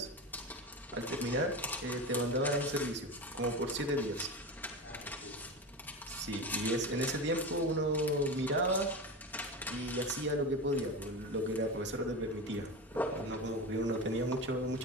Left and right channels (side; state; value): both; normal; correlation 0.24